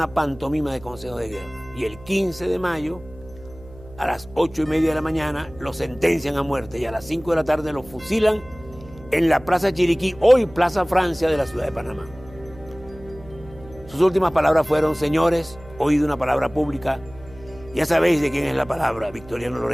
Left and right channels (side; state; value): right; noise; hum, 20 dB below the sound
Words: pantomima de consejo de guerra. Y el 15 de mayo, a las 8:30 de la mañana, lo sentencian a muerte y a las 5 de la tarde lo fusilan en la Plaza Chiriquí, hoy Plaza Francia de la ciudad de Panamá. Sus últimas palabras fueron: señores, oído una palabra pública, ya sabéis de quién es la palabra. Victoriano